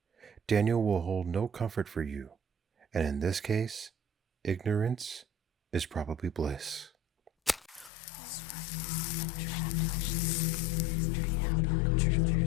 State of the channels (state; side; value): drops out; right; at 7.9 s